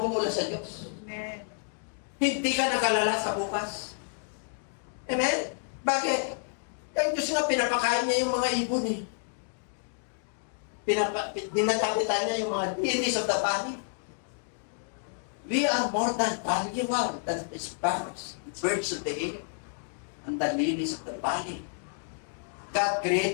sa Diyos. Amen. Hindi ka nakalala sa bukas. Amen? Bakit? Ang Diyos nga, pinapakain niya yung mga ibon eh. Dinatapitan niya yung mga lilies of the valley. We are more than valuable than the sparrows, the birds of the air, and the lilies of the valley. God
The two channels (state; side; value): silent; right; digital silence